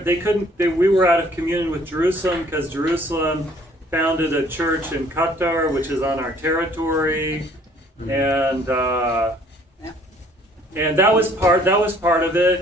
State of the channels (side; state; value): both; normal; correlation 0.58